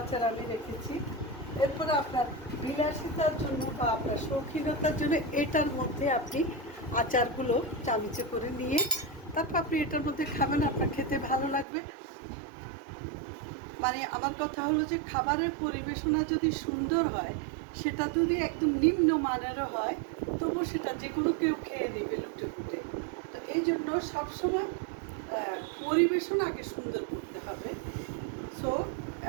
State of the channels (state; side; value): drops out; left; at 11.7 s